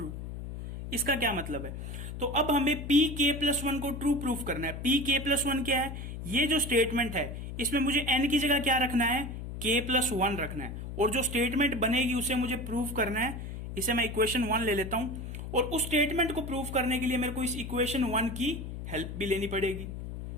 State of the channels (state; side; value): noise; left; hum, 8 dB below the sound